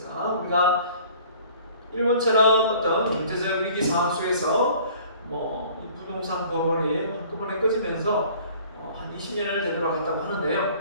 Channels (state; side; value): inverted; both; correlation -0.51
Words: 우리가 일본처럼 어떤 경제적 위기 상황 속에서 이 부동산 버블이 한꺼번에 꺼지면서 한 20년을 되돌아갔다고 하는데요.